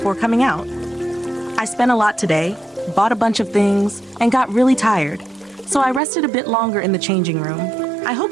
coming out. I spent a lot today, bought a bunch of things, and got really tired, so I rested a bit longer in the changing room. I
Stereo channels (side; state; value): left; drops out; at 6.0 s